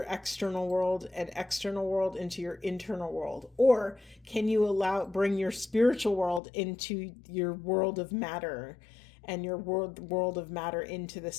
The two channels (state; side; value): drops out; right; at 6.4 s